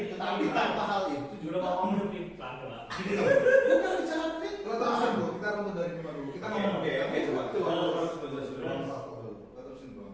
Tapi tanpa hal itu juga juga mau ngomong pelan pelan. bukan bicara itu. Kita terusin dulu, kita runut dari Bima dulu. Kita ngomong Oke, coba. Terus menjelaskan dulu. Kita terusin dulu.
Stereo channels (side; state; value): both; identical; correlation 1.00